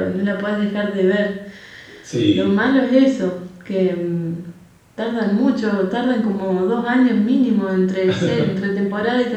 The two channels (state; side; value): identical; both; correlation 1.00